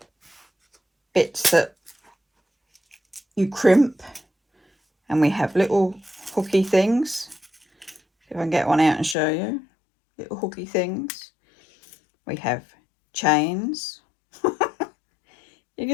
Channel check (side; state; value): right; drops out; at 9.2 s